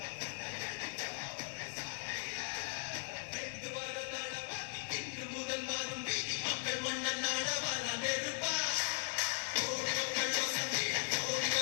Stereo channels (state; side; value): silent; right; 52 dB below the other